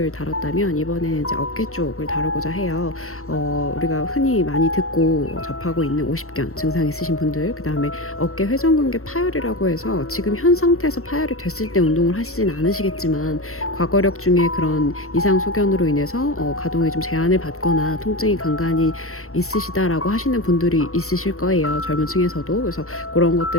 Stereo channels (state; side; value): late; right; 0.63 ms